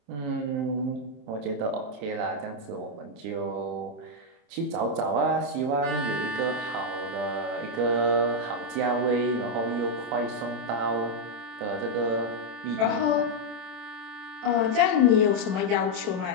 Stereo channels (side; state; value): left; late; 27 ms